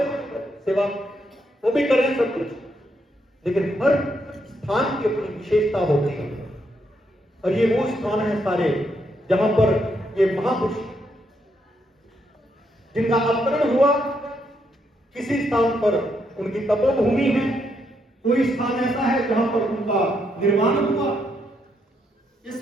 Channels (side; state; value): both; normal; correlation 0.77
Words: सेवा वो भी कर रहे हैं सब कुछ, लेकिन हर स्थान की अपनी विशेषता होती है। और ये वो स्थान है सारे जहां पर ये महापुरुष जिनका अवतरण हुआ, किसी स्थान पर उनकी तपोभूमि है, कोई स्थान ऐसा है जहां पर उनका निर्माण हुआ, ये